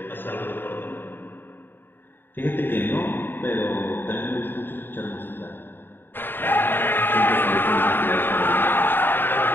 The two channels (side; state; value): right; late; 0.097 ms